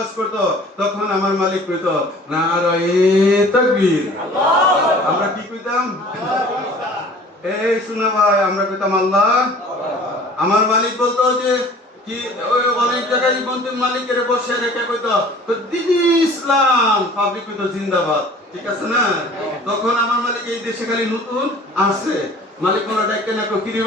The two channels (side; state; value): both; normal; correlation 0.48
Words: করত, তখন আমার মালিক কইত নারায়ে তাকবীর। আমরা কি কইতাম? এই শোনা ভাই, আমরা কইতাম আল্লাহ। আমার মালিক বলতো যে কি, ওই অনেক জায়গায় বলতে মালিকের বসে রেখে কইতো দিন ইসলাম, পাবলিক কইতো জিন্দাবাদ। ঠিক আছে না? তখন আমার মালিক এই দেশে খালি নতুন আসছে, মালিক মোরা ডাইকে না কি রে